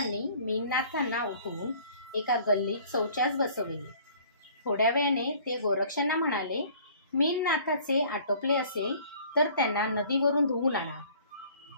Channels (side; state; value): both; inverted; correlation -0.52